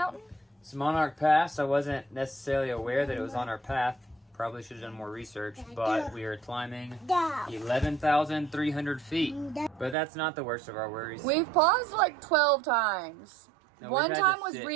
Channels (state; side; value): drops out; left; at 10.0 s